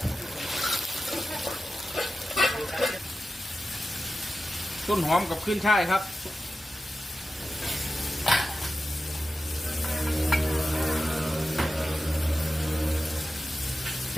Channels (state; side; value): normal; both; correlation 0.93